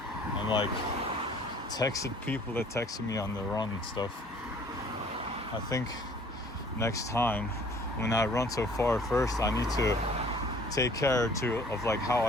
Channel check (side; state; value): both; normal; correlation 0.54